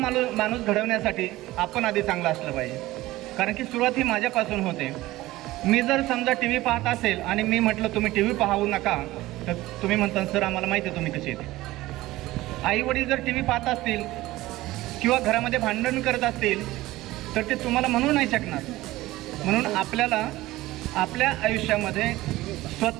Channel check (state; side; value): quieter; left; 17.6 dB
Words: घडवण्यासाठी आपण आधी चांगला असलं पाहिजे. कारण की सुरुवात ही माझ्यापासून होते. मी जर समजा TV पाहत असेल आणि मी म्हटलं तुम्ही TV पाहू नका तर तुम्ही म्हणता सर आम्हाला माहिती आहे तुम्ही कसे येते. आई वडील जर TV पाहत असतील किंवा घरामध्ये भांडण करत असतील तर ते तुम्हाला म्हणू नाही शकणार. म्हणून आपल्याला आपल्या आयुष्यामध्ये